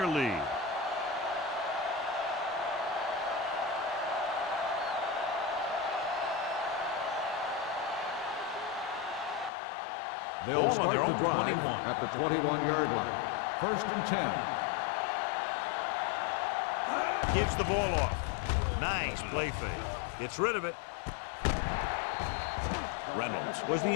lead. Ball on their own 21. At the 21-yard line. First and 10. All on us, y'all. Gives the ball off. Nice play fake. Gets rid of it. Reynolds was the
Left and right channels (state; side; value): drops out; right; at 9.5 s